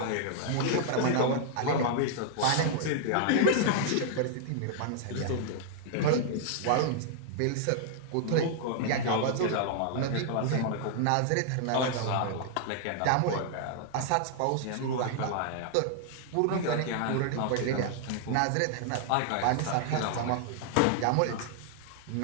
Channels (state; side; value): different; both; correlation -0.01